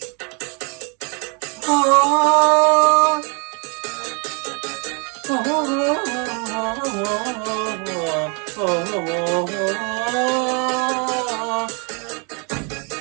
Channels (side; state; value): left; quieter; 34.7 dB